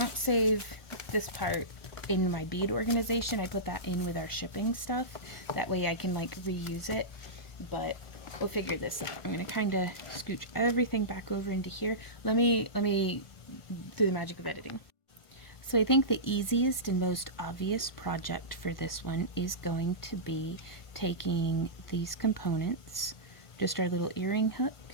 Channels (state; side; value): late; right; 1.5 ms